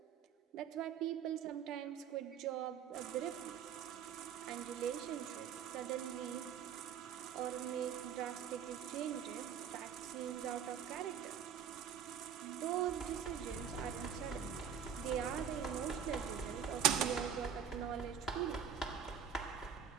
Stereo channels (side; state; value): left; quieter; 8.2 dB